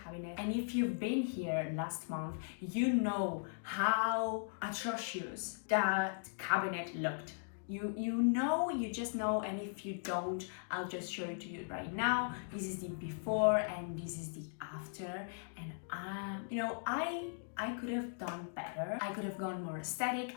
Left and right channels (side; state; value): right; silent; digital silence